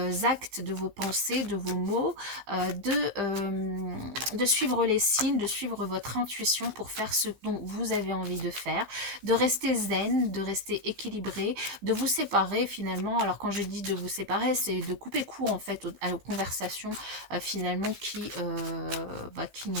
de vos pensées, de vos mots, de suivre les signes, de suivre votre intuition pour faire ce dont vous avez envie de faire, de rester zen, de rester équilibré, de vous séparer finalement. Alors quand je dis de vous séparer, c'est de couper court en fait aux conversations finalement qui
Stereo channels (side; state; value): left; late; 15 ms